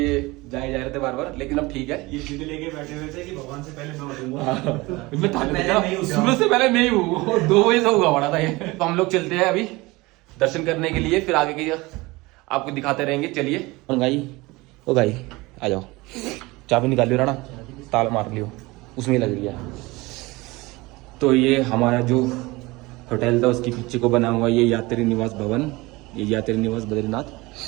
जा रहे थे बार बार, लेकिन अब ठीक है। ये जिद लेके बैठे हुए थे कि भगवान से पहले मैं उठूंगा। सुबह से पहले मैं ही हूँ, 2 बजे से हुआ पड़ा था ये। तो हम लोग चलते हैं अभी दर्शन करने के लिए, फिर आगे की आपको दिखाते रहेंगे। चलिए ओ भाई आ जाओ, चाबी निकाल लियो राणा, ताला मार लियो, उसमें लग रही है। तो ये हमारा जो होटल था उसके पीछे को बना हुआ ये यात्री निवास भवन, ये यात्री निवास बद्रीनाथ।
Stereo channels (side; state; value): left; quieter; 22.2 dB